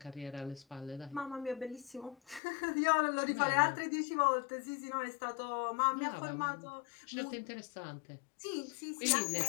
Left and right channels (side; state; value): right; drops out; at 2.4 s